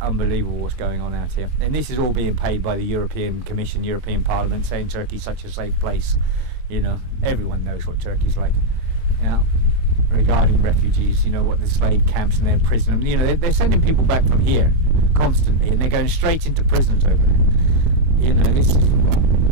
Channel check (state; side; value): late; left; 24 ms